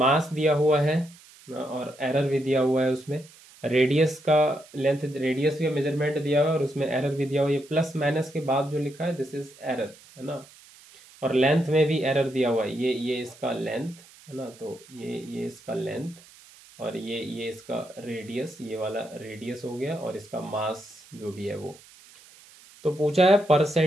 दिया हुआ है और एरर भी दिया हुआ है उसमें। रेडियस का लेंथ, रेडियस का मेजरमेंट दिया हुआ है और उसमें एरर भी दिया हुआ है। ये प्लस माइनस के बाद जो लिखा है दिस इज एरर, है ना। और लेंथ में भी एरर दिया हुआ है, ये इसका लेंथ, है ना। तो ये इसका लेंथ और ये इसका रेडियस, ये वाला रेडियस हो गया, और इसका मास जो भी है वो। तो पूछा है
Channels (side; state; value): right; noise; hiss, 23 dB below the sound